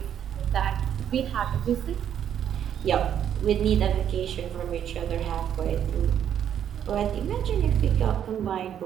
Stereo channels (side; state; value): left; quieter; 9.4 dB